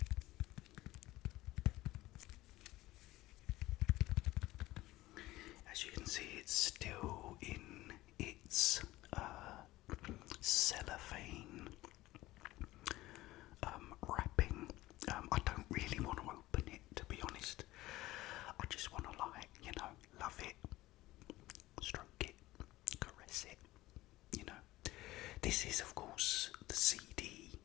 As you can see, it's still in its cellophane wrapping. I don't really want to open it, to be honest. I just want to, love it, stroke it, caress it. This is, of course, the CD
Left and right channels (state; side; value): quieter; right; 17.5 dB